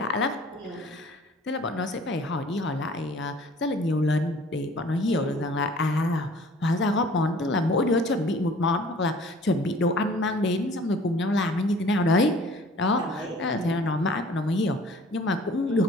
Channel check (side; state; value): both; normal; correlation 0.51